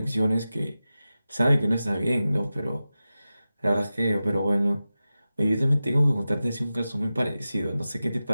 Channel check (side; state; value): both; inverted; correlation -0.94